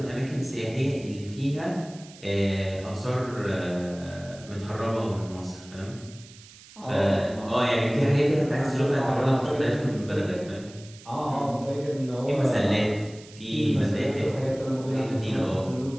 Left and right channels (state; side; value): noise; right; hiss, 21 dB below the sound